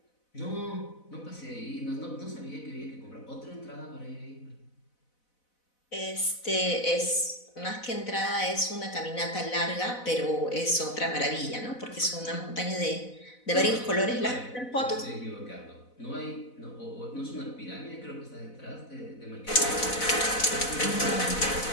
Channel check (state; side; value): late; right; 4.0 ms